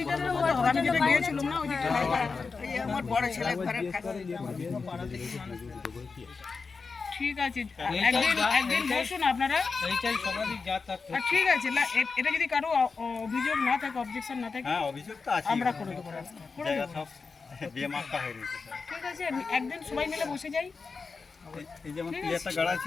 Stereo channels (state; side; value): quieter; right; 4.7 dB